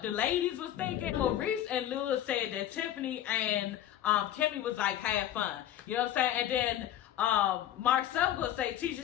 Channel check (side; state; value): right; quieter; 11.8 dB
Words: the ladies was thinking. Maurice and Lewis said that Tiffany and Kimmy was like, have fun. You know what I'm saying? And then Marcel gonna say,